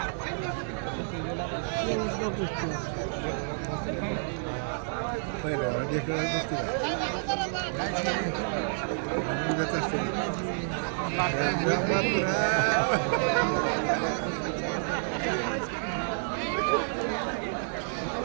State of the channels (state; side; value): silent; left; digital silence